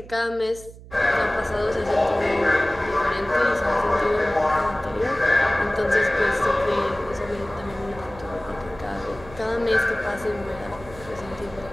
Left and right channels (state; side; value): noise; right; hum, 18 dB below the sound